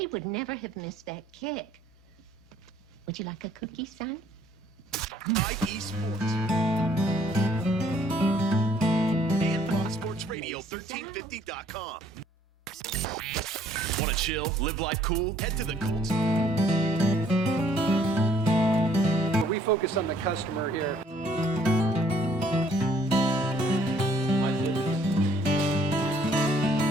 would never have missed that kick. Would you like a cookie, son? IE Sports. And Fox Sports Radio, 1350.com. Want to chill, live life cool? Head to the Colts. We focus on the customer here.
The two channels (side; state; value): both; normal; correlation 0.62